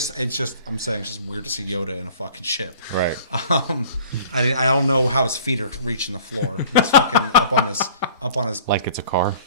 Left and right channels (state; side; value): inverted; both; correlation -0.49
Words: I'm saying it's just weird to see Yoda in a fucking ship. Right. I don't know how his feet are reaching the floor. He's fucking up on his Like it's a car.